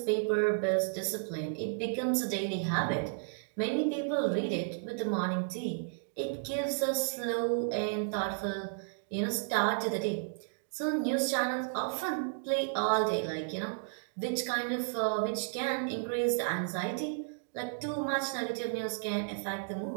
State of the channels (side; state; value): left; silent; digital silence